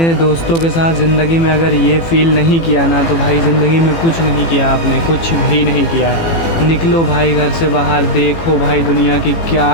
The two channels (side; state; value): right; late; 18 ms